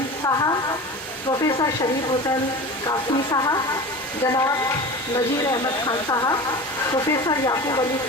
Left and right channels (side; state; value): both; normal; correlation 0.33